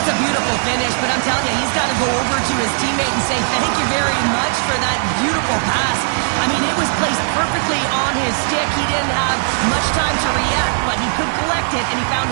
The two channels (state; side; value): silent; left; digital silence